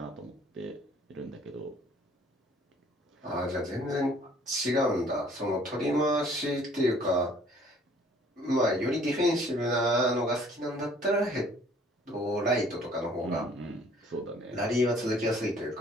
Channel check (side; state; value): both; normal; correlation 0.57